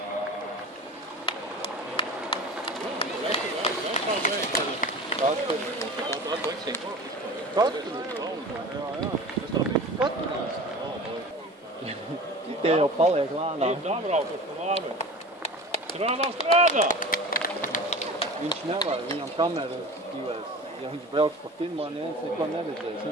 Tie jau paliek lānā. Ir dabraukas pa lāmi. Strādā! Viņš nevar, viņam kamera stīvēs. Ja viņš brauks pa pirmā, neviens neko neredzēs.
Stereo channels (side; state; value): both; normal; correlation 0.36